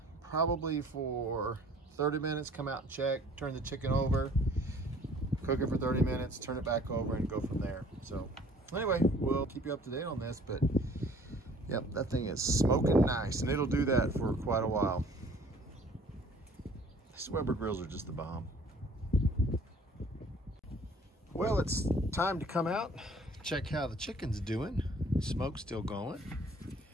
probably for 30 minutes, come out and check, turn the chicken over, cook it for 30 minutes, turn it back over, and go from there. So anyway, we'll keep you up to date on this, but yep, that thing is smoking nice, and it'll do that for quite a while. These Weber grills are just the bomb. Well, it's time to come out, check how the chicken's doing. Smoke's still going.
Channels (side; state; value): both; normal; correlation 0.54